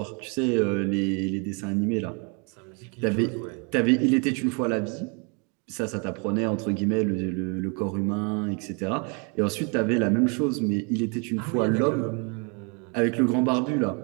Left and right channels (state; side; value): quieter; left; 34.6 dB